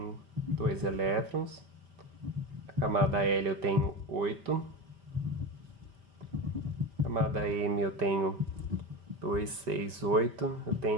2 elétrons. A camada L eu tenho 8. A camada M eu tenho 2, 6, 8. Eu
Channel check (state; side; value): late; left; 5.1 ms